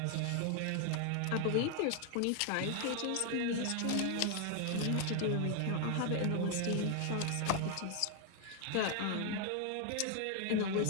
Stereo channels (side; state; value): both; different; correlation 0.00